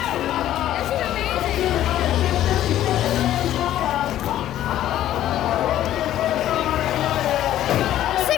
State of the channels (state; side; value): quieter; right; 12.6 dB